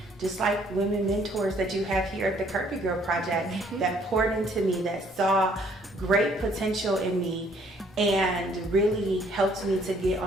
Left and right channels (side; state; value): both; normal; correlation 0.63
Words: just like women mentors that you have here at the Kirby Girl Project that poured into me, that saw great potential in me and really helped me to get